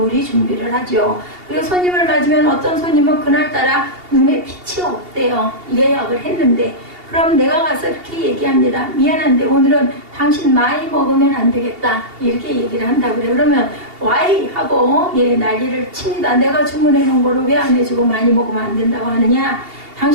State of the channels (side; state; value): left; late; 2.8 ms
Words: 준비를 하죠. 그리고 손님을 맞으면 어떤 손님은 그날따라 눈에 빛이 없대요. 예약을 했는데. 그럼 내가 가서 이렇게 얘기합니다. 미안한데 오늘은 당신 많이 먹으면 안 되겠다. 이렇게 얘기를 한다고 그래요. 그러면 와이 하고 난리를 칩니다. 내가 주문해 놓은 거를 왜 안 해주고 많이 먹으면 안 된다고 하느냐.